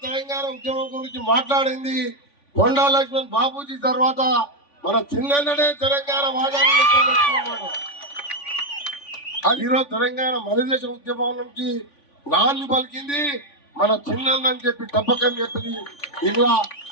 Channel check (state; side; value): late; right; 3.5 ms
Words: తెలంగాణ ఉద్యమం గురించి మాట్లాడింది కొండా లక్ష్మణ్ బాబూజీ. తర్వాత మన చిన్ననే తెలంగాణ వాదాన్ని అది ఈరోజు తెలంగాణ మనదేశ ఉద్యమం నుంచి నాన్ని పలికింది మన చిన్నని చెప్పి తప్పకని చెప్పింది. ఇలా